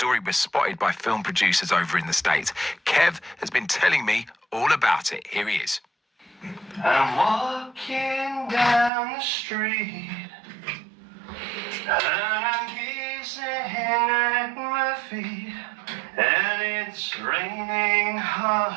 was spotted by film producers over in the States. Kev has been telling me all about it. Here he is. I'm walking down the street and I'm gazing at my feet, and it's raining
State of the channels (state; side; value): drops out; left; at 8.9 s